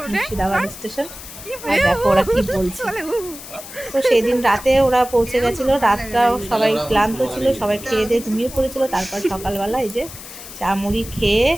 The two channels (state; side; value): noise; left; hiss, 14 dB below the sound